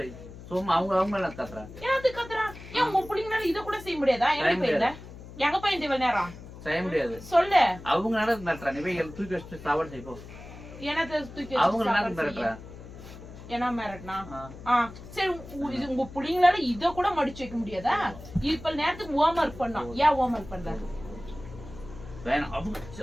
வை. சும்மா அவங்களாம் கத்துறா. ஏன் கத்துறா? ஏன் உங்க புள்ளிங்கனால இத கூட செய்ய முடியாதா? எங்க போயிருந்த? எங்க போயிருந்த இவ்வளவு நேரம்? செய்ய முடியாது. சொல்லு. அவங்க நடத்துறா, நீ போய் தூக்கி வச்சுட்டு சாப்பாடு செய்ப்போ. என்னத்த தூக்கி அவங்க நடத்துறா? என்ன மிரட்டினா? சரி உங்க புள்ளிங்களால இத கூட மடிச்சு வைக்க முடியாதா? இப்ப நேரத்துக்கு ஹோம் ஒர்க் பண்ணோம். ஏன் ஹோம் ஒர்க் பண்ற? வேணாம்.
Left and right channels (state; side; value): noise; left; hum, 15 dB below the sound